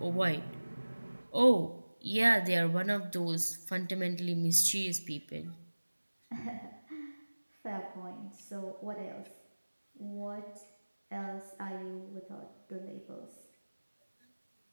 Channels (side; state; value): both; inverted; correlation -1.00